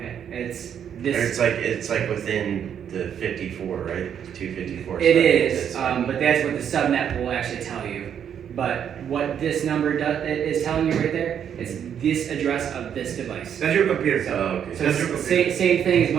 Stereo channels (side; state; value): left; quieter; 8.7 dB